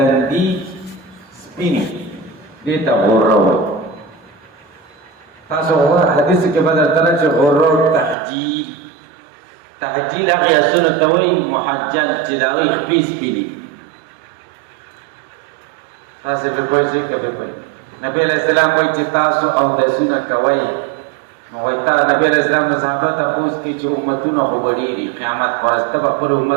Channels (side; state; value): left; drops out; at 8.2 s